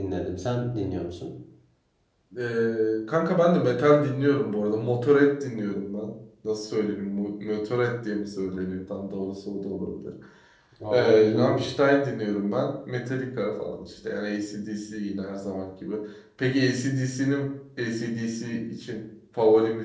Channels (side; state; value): both; identical; correlation 1.00